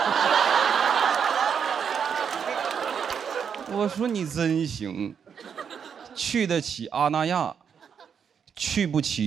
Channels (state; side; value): quieter; left; 7.2 dB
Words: 我说你真行，去得起阿那亚，去不